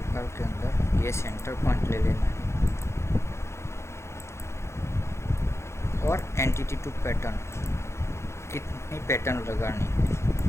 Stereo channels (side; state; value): right; late; 0.13 ms